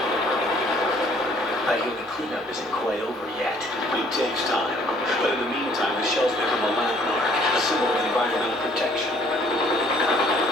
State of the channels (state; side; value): normal; both; correlation 0.60